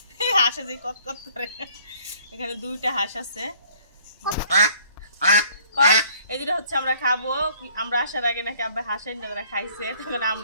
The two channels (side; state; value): both; inverted; correlation -0.58